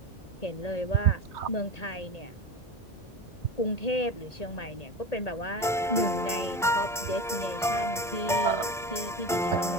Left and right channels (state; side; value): normal; both; correlation 0.27